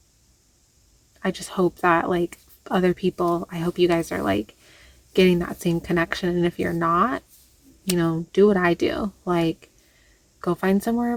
I just hope that, like, other people, I hope you guys are, like, getting that same connection. And if you're not, do what I do. Like, go find somewhere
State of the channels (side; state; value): both; identical; correlation 1.00